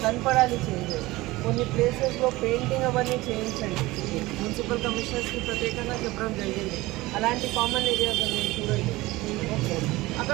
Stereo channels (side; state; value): left; quieter; 19.7 dB